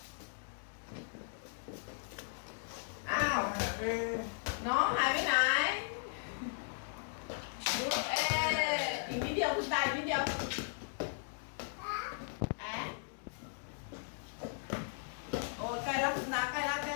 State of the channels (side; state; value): right; silent; digital silence